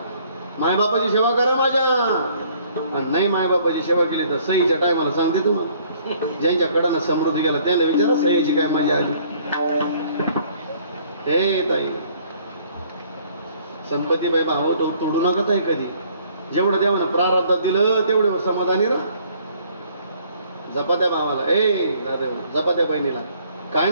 मायबापाची सेवा करा माझ्या. आणि नाही मायबापाची सेवा केली तर सहीच्या टायमाला सांगते तुम्हाला. ज्यांच्याकडनं समृद्धी गेला त्याला विचारा सहीची काय मजा आली. हे ताई संपत्तीबाई भाव तोडू नका ताई कधी. जेवढं देवानं प्रारब्धात दिलं तेवढं समाधानी राहा. जपा त्या भावाला. ए दादा जपा त्या बहिणीला. काय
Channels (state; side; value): inverted; both; correlation -0.60